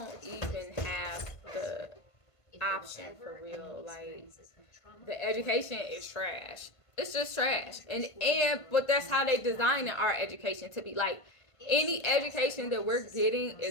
even have the option for real. Like the education is trash. It's just trash. But that's how they design our education to be. Like any education that we're getting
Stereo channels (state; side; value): late; right; 1.5 ms